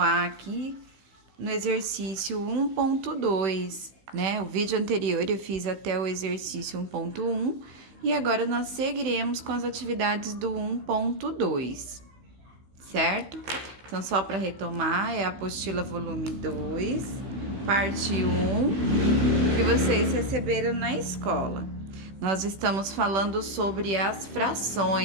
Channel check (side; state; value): left; late; 16 ms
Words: aqui no exercício 1.2, né? O vídeo anterior eu fiz até o exercício 1.1 e agora nós seguiremos com as atividades do 1.2, certo? Então, só para retomar, é a apostila volume 2, parte 1, que vocês receberam na escola. Nós estamos falando sobre as